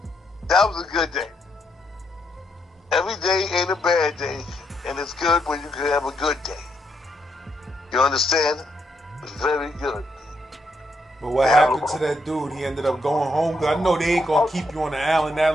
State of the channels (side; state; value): both; normal; correlation 0.77